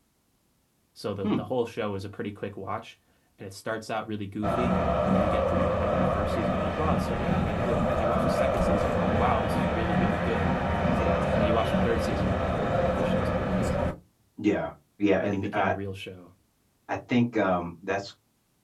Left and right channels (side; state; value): both; identical; correlation 1.00